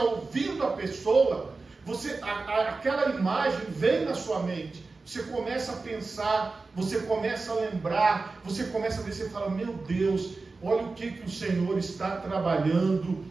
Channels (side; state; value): left; quieter; 3.8 dB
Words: ouvindo a pessoa, aquela imagem vem na sua mente. Você começa a pensar, você começa a lembrar, você começa a ver, você fala, meu Deus, olha o que o Senhor está trabalhando